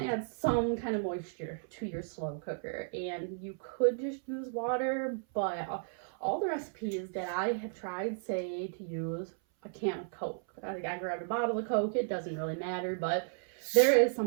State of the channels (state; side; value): silent; left; 55 dB below the other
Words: to add some kind of moisture to your slow cooker, and you could just use water, but all the recipes that I have tried say to use a can of Coke. I grabbed a bottle of Coke. It doesn't really matter, but there is